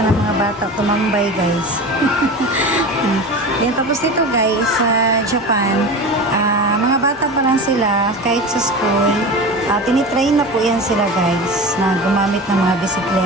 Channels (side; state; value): both; normal; correlation 0.30